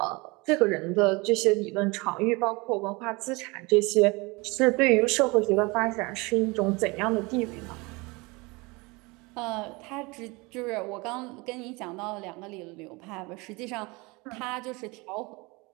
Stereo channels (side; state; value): left; quieter; 25.6 dB